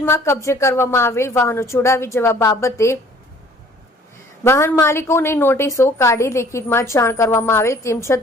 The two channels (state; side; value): normal; both; correlation 0.55